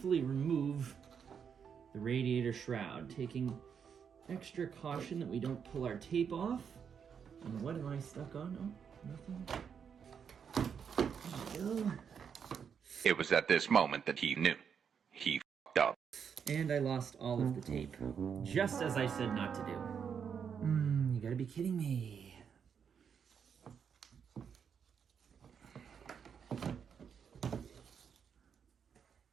remove the radiator shroud, taking extra caution that we don't pull our tape off. And what am I stuck on? Nothing. There we go. It was at this moment that he knew. He f***ed up. And I lost all of the tape. Just as I said not to do. You gotta be kidding me.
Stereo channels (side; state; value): left; quieter; 7.1 dB